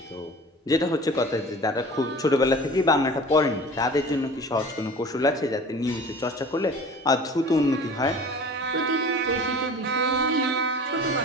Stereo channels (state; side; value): normal; both; correlation 0.41